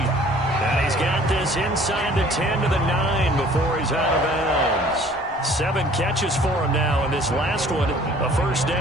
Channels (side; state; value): both; normal; correlation 0.53